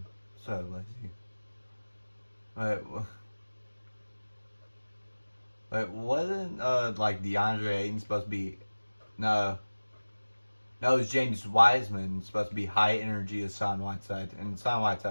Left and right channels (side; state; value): both; inverted; correlation -1.00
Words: so lazy. Wait, wasn't like DeAndre Ayton supposed to be? No, it was James Wiseman supposed to be high energy as Son Whiteside, and Son